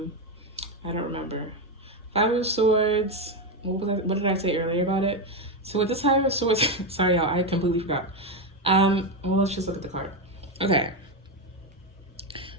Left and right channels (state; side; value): normal; both; correlation 0.09